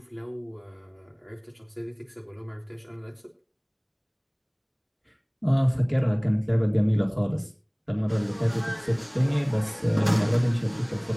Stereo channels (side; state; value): both; identical; correlation 1.00